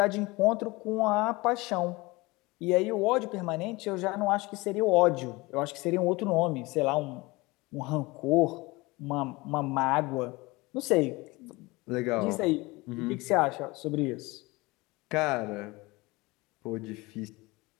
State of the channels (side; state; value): right; quieter; 22.9 dB